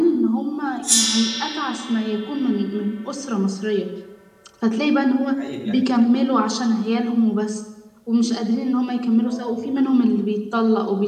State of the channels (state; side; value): identical; both; correlation 1.00